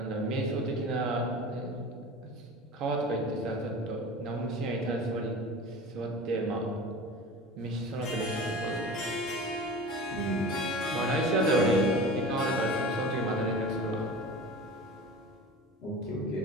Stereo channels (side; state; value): both; normal; correlation 0.35